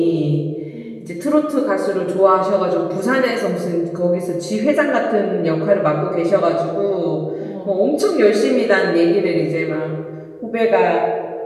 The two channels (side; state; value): both; identical; correlation 1.00